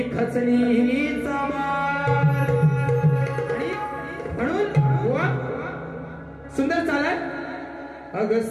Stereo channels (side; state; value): both; identical; correlation 1.00